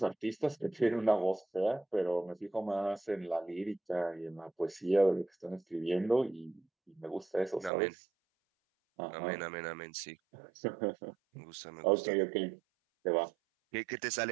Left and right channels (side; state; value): left; drops out; at 7.7 s